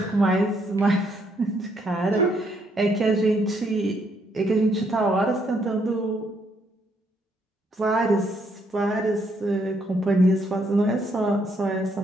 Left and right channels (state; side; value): normal; both; correlation 0.72